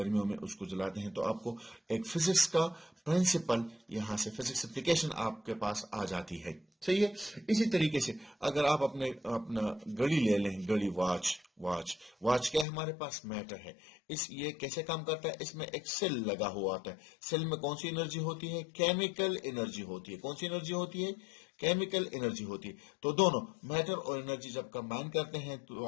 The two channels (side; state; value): right; drops out; at 12.7 s